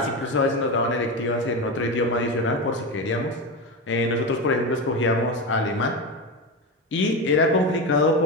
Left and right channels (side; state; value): both; normal; correlation 0.18